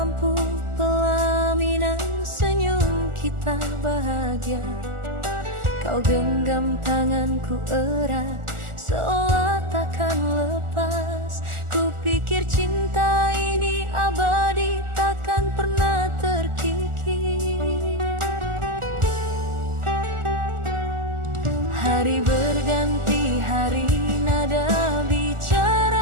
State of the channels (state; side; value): late; left; 1.4 ms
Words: lampu pelaminan senyum kita bahagia. Kau genggam tanganku erat, seolah takkan lepas. Ku pikir cinta ini abadi, takkan pernah terkikis. Hari berganti hari, nada